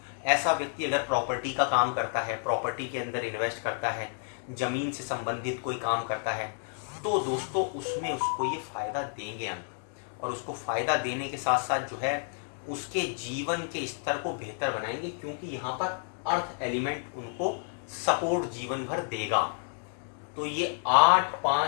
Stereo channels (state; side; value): silent; right; 58 dB below the other